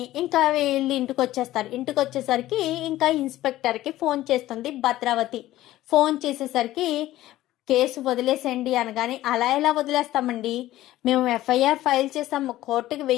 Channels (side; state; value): right; quieter; 15.2 dB